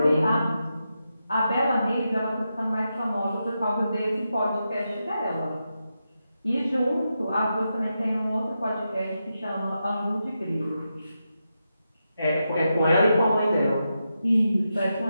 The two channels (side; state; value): both; inverted; correlation -0.87